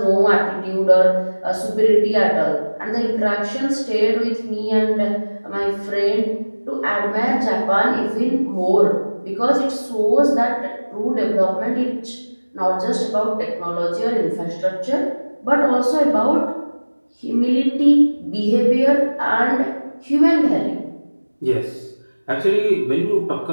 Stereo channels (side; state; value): both; inverted; correlation -1.00